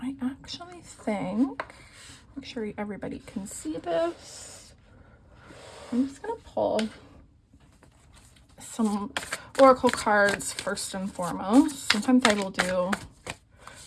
actually think, make sure everybody can see this. I'm just gonna pull some oracle cards first and foremost. Sometimes I will do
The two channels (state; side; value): identical; both; correlation 1.00